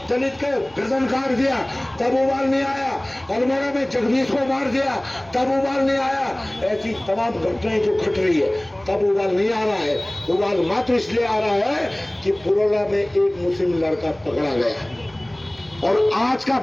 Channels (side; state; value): right; noise; rumble, 28 dB below the sound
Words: दलित को गर्दन काट दिया तब उबाल नहीं आया। अल्मोड़ा में जगदीश को मार दिया तब उबाल नहीं आया। ऐसी तमाम घटनाएं जो घट रही है तब उबाल नहीं आ रहा है। उबाल मात्र इसलिए आ रहा है कि पुरोला में एक मुस्लिम लड़का पकड़ा गया और आज का